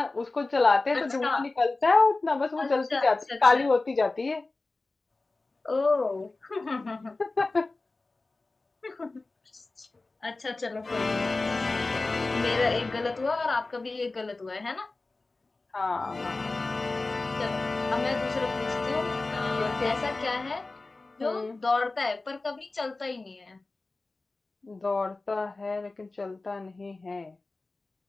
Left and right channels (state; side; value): quieter; right; 3.4 dB